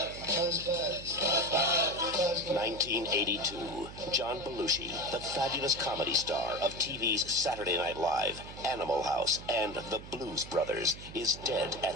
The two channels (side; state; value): right; noise; hum, 14 dB below the sound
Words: 1982, John Belushi, the fabulous comedy star of TV's Saturday Night Live, Animal House, and The Blues Brothers, is dead